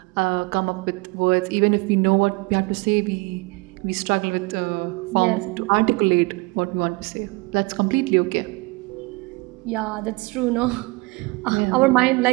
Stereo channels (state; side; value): quieter; left; 25.6 dB